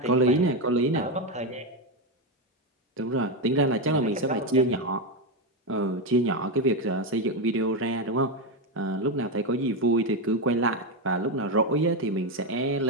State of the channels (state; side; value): normal; both; correlation 0.09